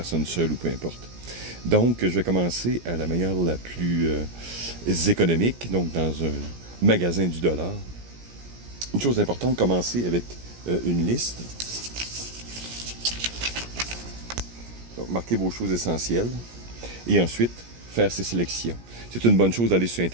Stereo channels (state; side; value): late; left; 17 ms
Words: seule ou peu importe. Donc, je vais commencer à la manière la plus économique, donc dans un magasin du dollar. Une chose importante, commencer avec une liste. Donc, marquez vos choses essentielles et ensuite faire ses sélections. C'est une bonne chose d'aller sur